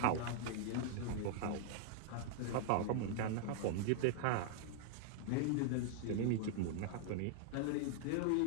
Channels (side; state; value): both; different; correlation 0.00